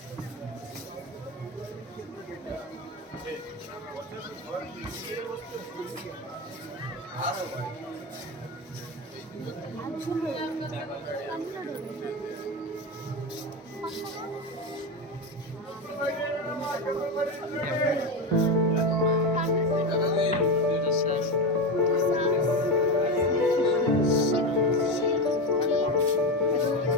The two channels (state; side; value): normal; both; correlation 0.17